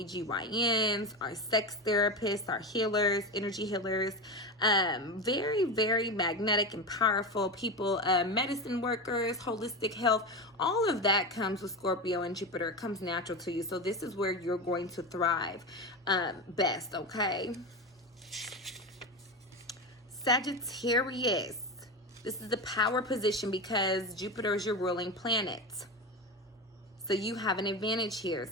our sex therapists, our healers, energy healers. Very, very magnetic and powerful people, medicine workers, holistic health. All of that comes with Scorpio and Jupiter. It comes natural to you. So this is where you're going to thrive best, okay? Sagittarius. This is the power position because Jupiter is your ruling planet. So you have an advantage here,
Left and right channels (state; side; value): normal; both; correlation 0.20